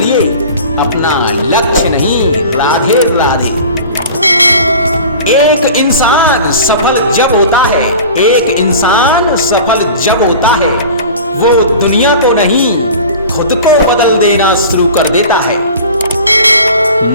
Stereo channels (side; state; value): both; inverted; correlation -0.39